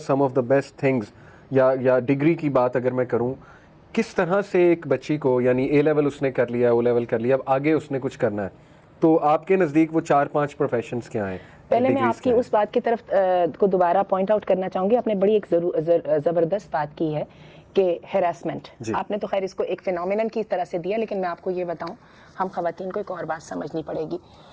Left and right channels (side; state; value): both; identical; correlation 1.00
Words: of the best things, या डिग्री की बात अगर मैं करूं, किस तरह से एक बच्ची को, यानी ए लेवल उसने कर लिया, ओ लेवल कर लिया, अब आगे उसने कुछ करना है, तो आपके नज़दीक वो 4-5 प्रोफेशंस क्या हैं? पहले मैं आपकी उस बात की तरफ को दोबारा पॉइंट आउट करना चाहूँगी। आपने बड़ी एक ज़बरदस्त बात की है कि हैरेसमेंट, आपने तो खैर इसको एक फिनोमिनन की तरह से दिया, लेकिन मैं आपको ये बताऊं, हम खवातीन को एक और बात समझनी पड़ेगी।